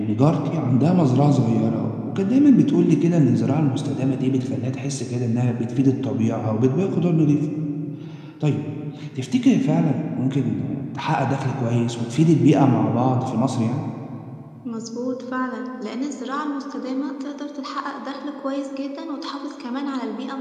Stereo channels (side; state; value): both; identical; correlation 1.00